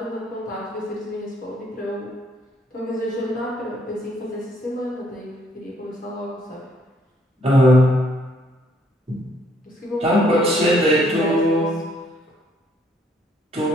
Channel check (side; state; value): both; normal; correlation 0.67